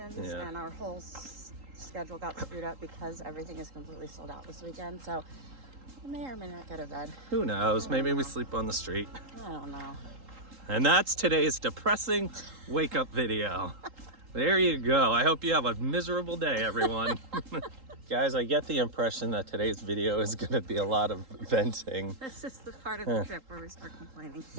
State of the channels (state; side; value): late; left; 3.8 ms